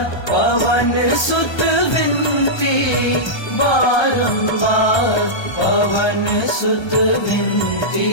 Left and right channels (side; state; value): right; late; 1.3 ms